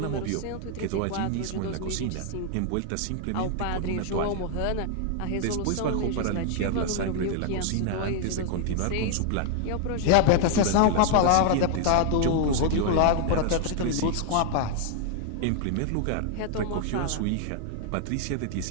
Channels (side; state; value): both; different; correlation 0.00